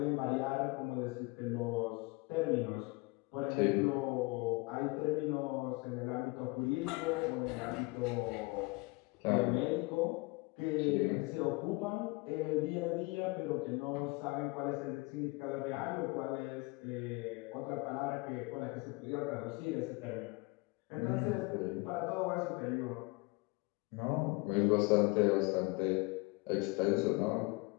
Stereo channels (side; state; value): right; quieter; 25.6 dB